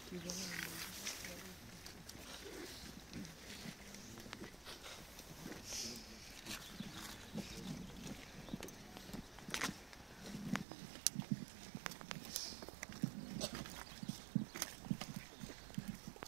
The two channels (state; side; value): drops out; left; at 10.7 s